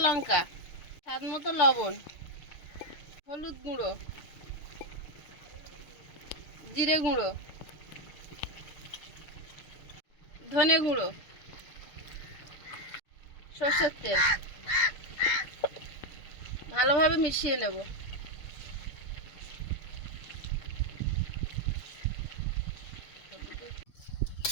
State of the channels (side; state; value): right; late; 6.9 ms